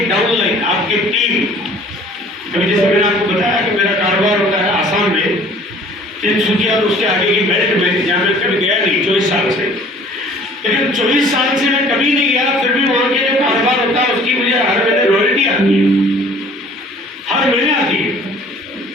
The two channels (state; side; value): normal; both; correlation 0.52